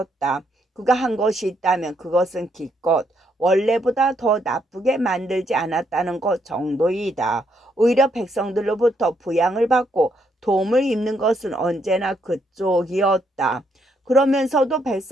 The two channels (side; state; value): both; normal; correlation 0.74